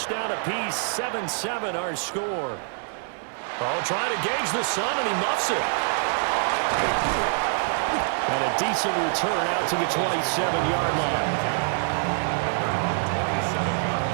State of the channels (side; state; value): left; silent; 61 dB below the other